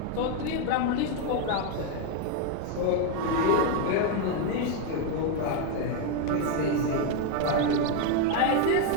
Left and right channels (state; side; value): different; both; correlation 0.01